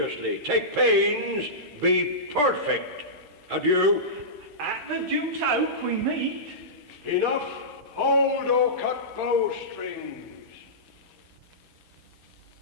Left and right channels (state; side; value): late; left; 13 ms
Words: Take pains, be perfect. Adieu. At the Duke's Oak we meet. Enough. Hold or cut bowstrings.